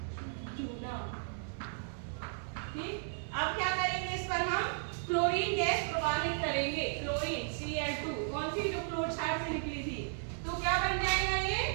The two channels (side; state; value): left; silent; 55 dB below the other